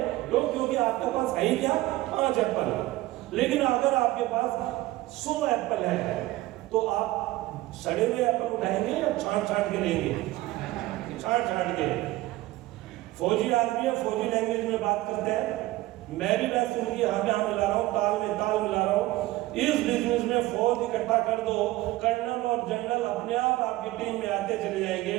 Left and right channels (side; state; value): left; quieter; 18.0 dB